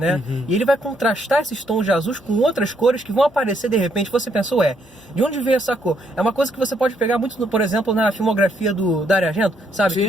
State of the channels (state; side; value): normal; both; correlation 0.72